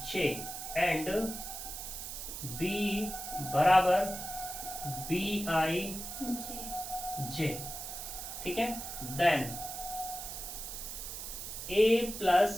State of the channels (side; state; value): right; noise; hiss, 7 dB below the sound